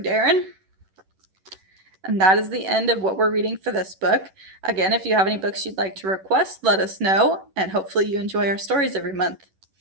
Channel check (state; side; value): late; left; 11 ms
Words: Darren. And that is the end of what we're reading for this book. Again, if you have any books you'd like to request, let us know, and hopefully you enjoy our stories every month.